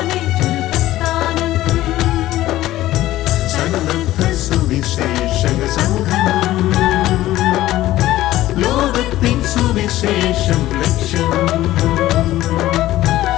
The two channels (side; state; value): right; quieter; 15.2 dB